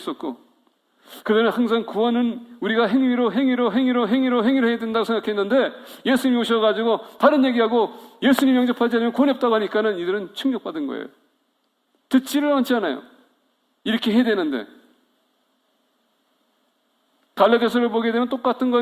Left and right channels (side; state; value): both; identical; correlation 1.00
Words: 그들은 항상 구원은 우리가 행위로 해야 된다고 생각했는데 예수님이 오셔가지고 다른 얘기하고 예수님 영접하지 않으면 구원이 없다고 하니까는 이들은 충격받은 거예요. 듣지를 않지 않아요. 이렇게 해야 되는데 갈라디아서를 보게 되면 똑같은